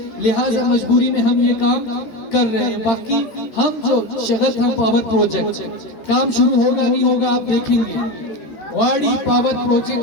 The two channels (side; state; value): right; late; 14 ms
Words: لہٰذا مجبوری میں ہم یہ کام کر رہے ہیں. باقی ہم جو شغل پاور پروجیکٹ کام شروع ہوگا نہیں ہوگا آپ دیکھیں گے. واڑی پاور